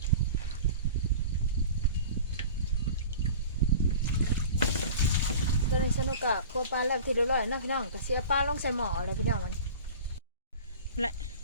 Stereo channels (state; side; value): inverted; both; correlation -0.38